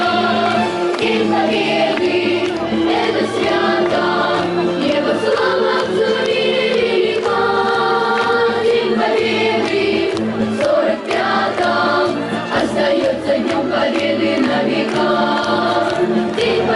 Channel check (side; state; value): both; identical; correlation 1.00